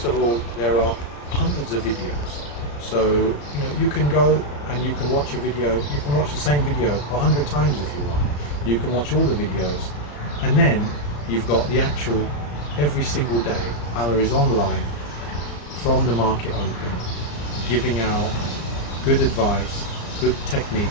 of all there are hundreds of videos. So you can go and you can watch a video, you can watch the same video 100 times if you want. You can watch all the videos, and then you've got the actual, every single day Alla is online from the market open, giving out good advice, good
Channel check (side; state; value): right; late; 34 ms